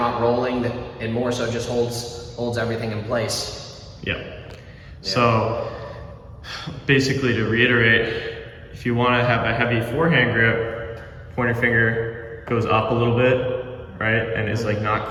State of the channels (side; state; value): both; identical; correlation 1.00